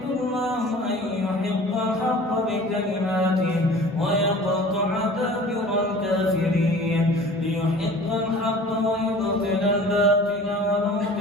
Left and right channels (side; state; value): both; normal; correlation 0.44